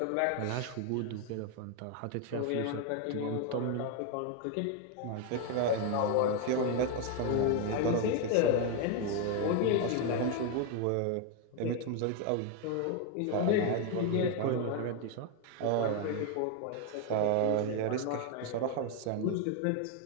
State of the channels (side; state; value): both; different; correlation 0.01